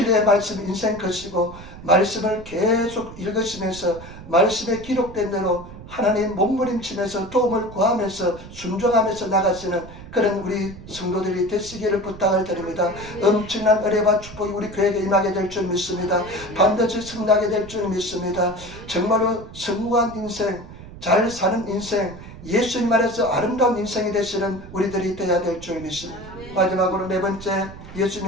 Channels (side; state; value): right; noise; rumble, 15 dB below the sound